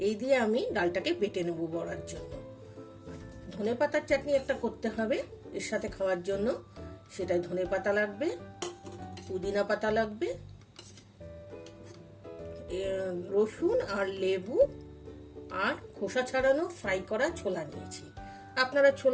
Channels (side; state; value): both; identical; correlation 1.00